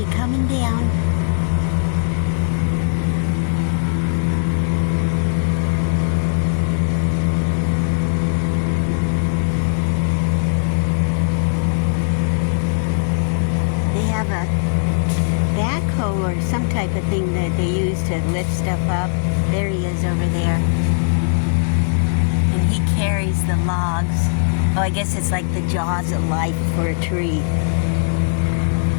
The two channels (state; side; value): silent; right; digital silence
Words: coming down. They have a backhoe or some type of thing that they use to lift stuff up. There he is over there. And he carries the logs. Oh, I guess it's like the jaws of life for a tree.